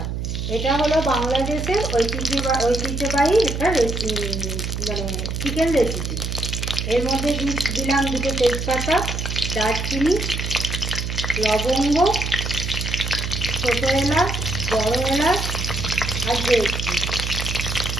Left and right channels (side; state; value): right; noise; hum, 3 dB below the sound